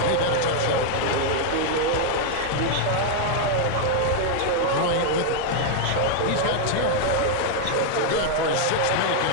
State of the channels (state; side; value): different; both; correlation 0.00